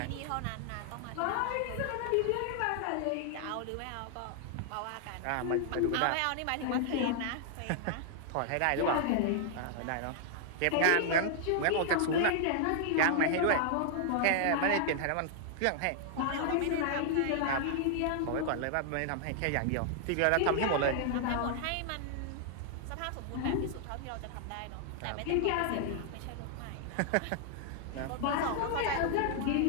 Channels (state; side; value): different; both; correlation -0.01